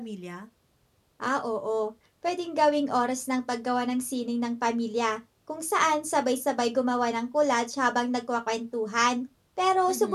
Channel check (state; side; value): identical; both; correlation 1.00